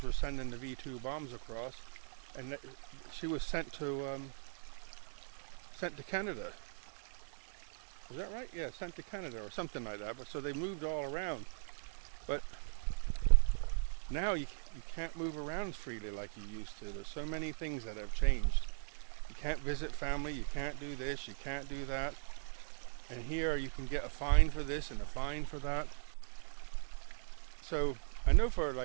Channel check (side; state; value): left; silent; 52 dB below the other